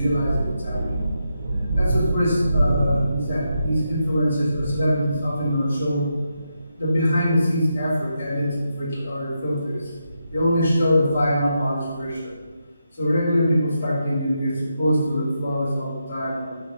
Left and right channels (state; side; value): inverted; both; correlation -0.84